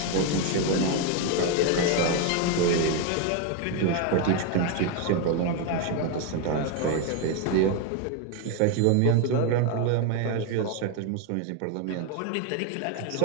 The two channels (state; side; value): different; both; correlation 0.01